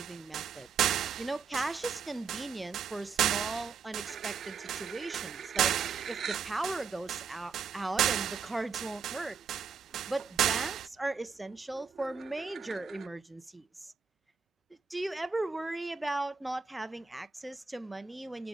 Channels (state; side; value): quieter; left; 5.9 dB